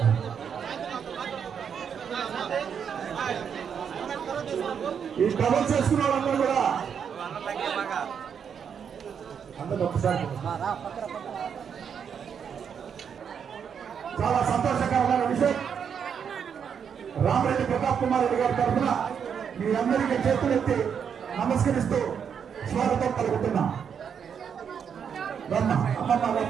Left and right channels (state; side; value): quieter; left; 7.4 dB